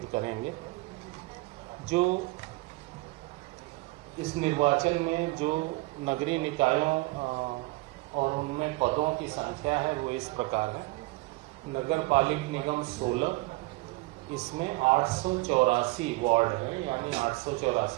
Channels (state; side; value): quieter; left; 23.1 dB